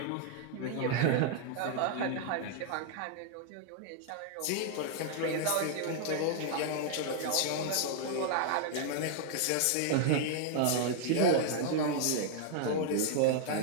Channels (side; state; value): both; different; correlation 0.00